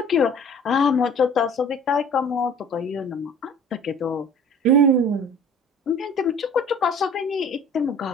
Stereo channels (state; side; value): normal; both; correlation 0.47